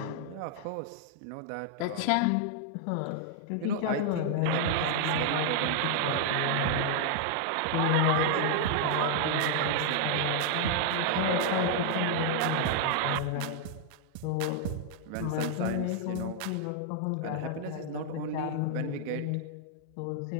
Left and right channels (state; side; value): different; both; correlation -0.01